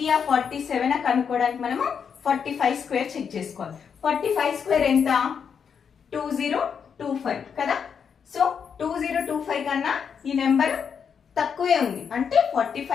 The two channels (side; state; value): right; quieter; 6.9 dB